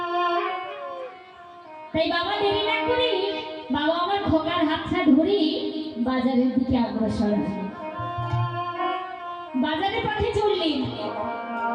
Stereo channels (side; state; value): both; identical; correlation 1.00